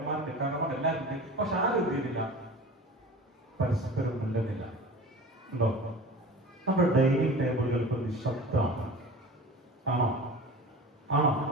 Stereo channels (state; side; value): normal; both; correlation 0.37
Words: ഇക്കാക്കന്മാരുണ്ട്, എല്ലാവരും ഉണ്ട്. പക്ഷെ ആരും എന്ത് ചെയ്യുന്നില്ല, പരസ്പരം മിണ്ടുന്നില്ല. ഉണ്ടോ? നമ്മുടെ ഡൈനിങ് ടേബിളുകൾ ഇപ്പൊ നിശബ്ദമാണ്. ആണോ?